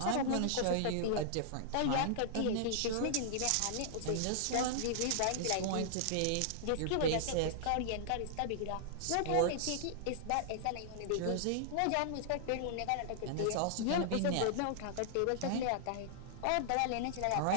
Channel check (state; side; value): different; both; correlation -0.01